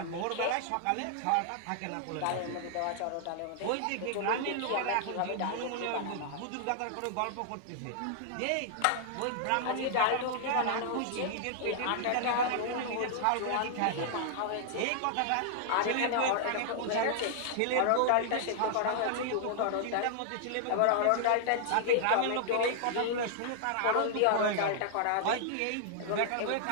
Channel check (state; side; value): different; both; correlation -0.01